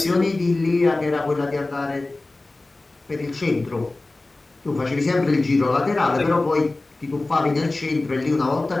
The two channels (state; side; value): quieter; right; 3.1 dB